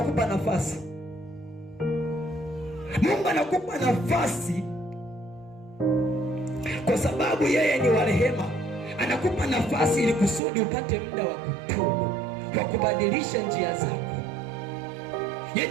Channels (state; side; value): drops out; left; at 10.4 s